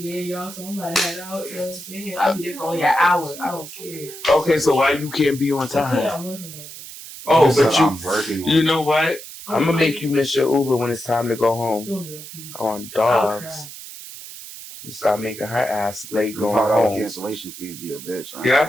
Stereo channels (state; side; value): noise; right; hiss, 13 dB below the sound